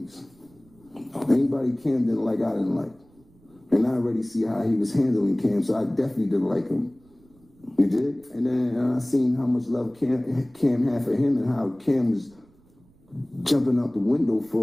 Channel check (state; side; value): noise; right; rumble, 30 dB below the sound